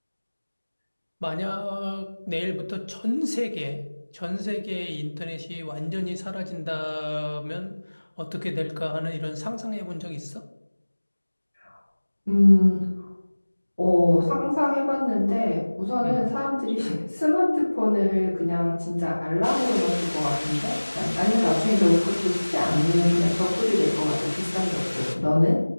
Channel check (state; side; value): inverted; both; correlation -1.00